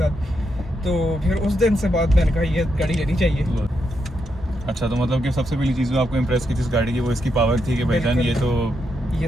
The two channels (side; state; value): both; normal; correlation 0.82